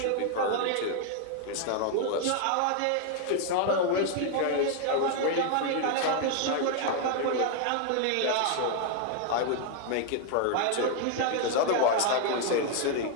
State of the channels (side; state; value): both; different; correlation 0.00